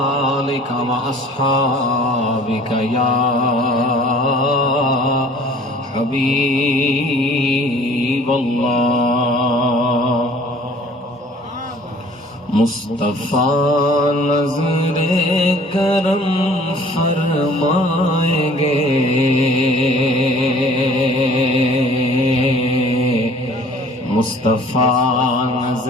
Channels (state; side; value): normal; both; correlation 0.51